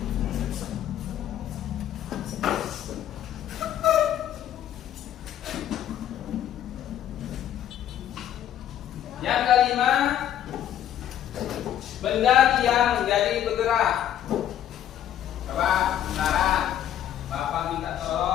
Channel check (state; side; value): quieter; right; 11.0 dB